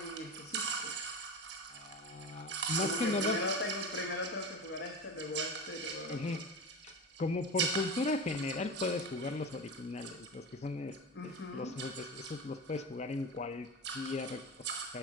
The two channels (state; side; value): normal; both; correlation 0.26